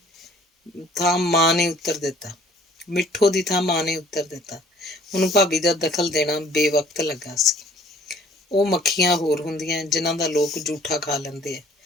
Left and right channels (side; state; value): both; normal; correlation 0.55